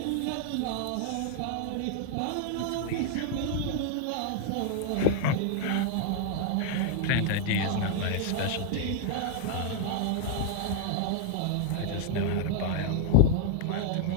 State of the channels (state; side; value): different; both; correlation 0.00